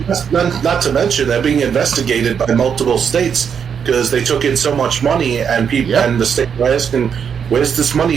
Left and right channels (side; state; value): left; quieter; 7.3 dB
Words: mention they're being investigated by multiple states because they took in so much money, and people and the state were asking, where's this